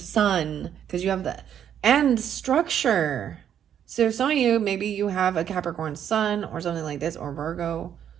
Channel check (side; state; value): left; quieter; 9.4 dB